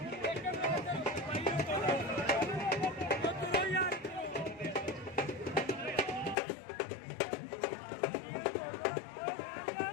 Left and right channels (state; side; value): drops out; right; at 6.4 s